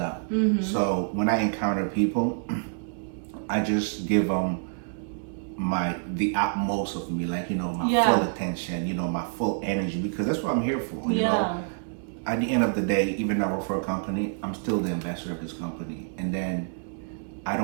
So when I encounter people, I just give them the utmost of me, like, you know, my full attention, you know, my full energy, because that's what I'm here for, you know. At the end of the day, even though I work for a company, I'm still the ambassador of this company. And then I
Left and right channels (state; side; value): silent; left; 60 dB below the other